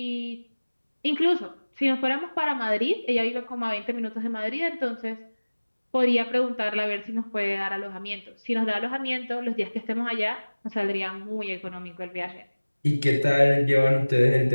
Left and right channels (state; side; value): inverted; both; correlation -1.00